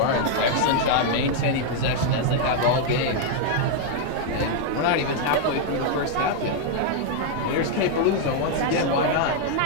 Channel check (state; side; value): different; both; correlation 0.00